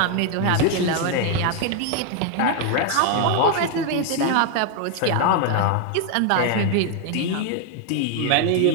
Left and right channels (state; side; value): different; both; correlation 0.01